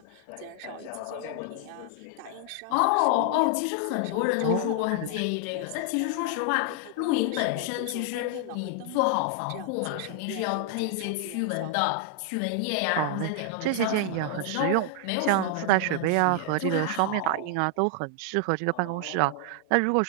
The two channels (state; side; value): different; both; correlation 0.00